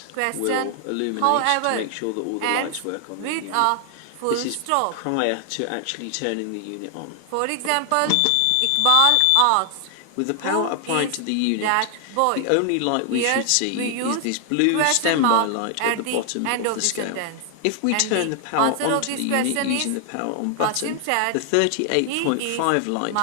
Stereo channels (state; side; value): different; both; correlation 0.00